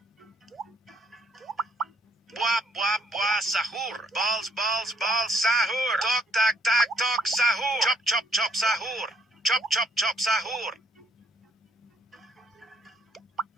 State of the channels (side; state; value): both; normal; correlation 0.69